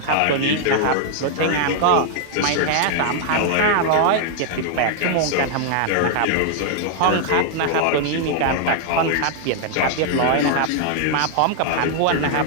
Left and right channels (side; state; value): both; different; correlation 0.00